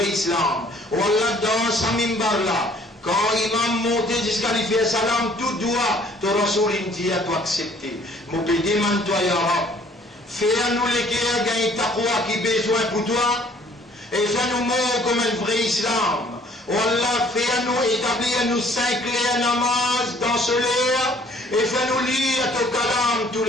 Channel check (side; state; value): both; normal; correlation 0.57